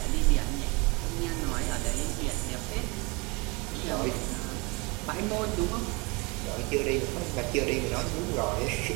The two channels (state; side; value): quieter; left; 27.8 dB